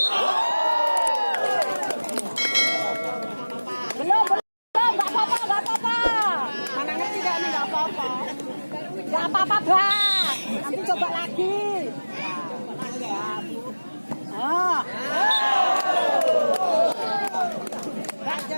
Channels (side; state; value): both; inverted; correlation -1.00